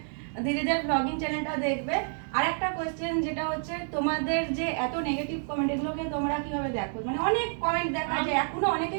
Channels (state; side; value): silent; left; 57 dB below the other